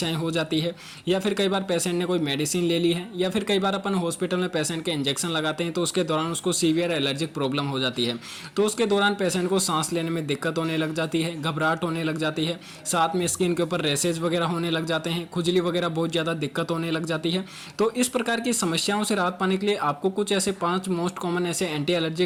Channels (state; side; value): identical; both; correlation 1.00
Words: हो जाती है, या फिर कई बार पेशेंट ने कोई मेडिसिन ले ली है, या फिर कई बार अपन हॉस्पिटल में पेशेंट के इंजेक्शन लगाते हैं तो उसके दौरान उसको सीवियर एलर्जिक प्रॉब्लम हो जाती है। तो उसके दौरान पेशेंट को सांस लेने में दिक्कत होने लग जाती है, घबराहट होने लग जाती है, साथ में स्किन के ऊपर रैशेज वगैरह होने लग जाते हैं, खुजली वगैरह बहुत ज़्यादा दिक्कत होने लग जाती है। तो इस प्रकार की समस्याओं से राहत पाने के लिए आपको कुछ ऐसे 5 मोस्ट कॉमन ऐसे एंटी